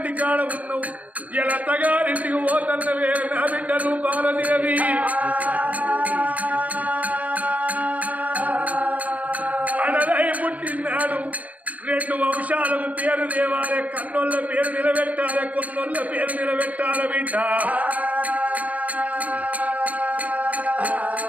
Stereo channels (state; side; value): late; left; 0.070 ms